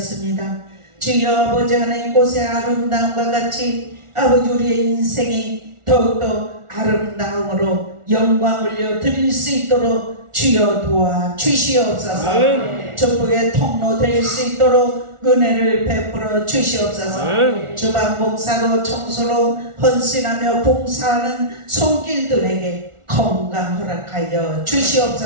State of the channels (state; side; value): late; left; 1.4 ms